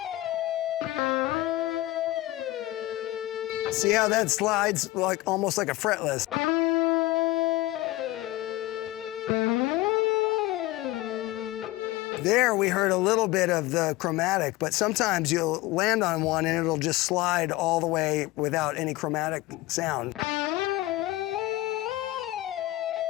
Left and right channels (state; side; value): quieter; right; 18.0 dB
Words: See how that slides like almost like a fretless. There we heard a little bit of the chromatic, but sometimes you'll land on one and it'll just slide all the way without any chromatic sound.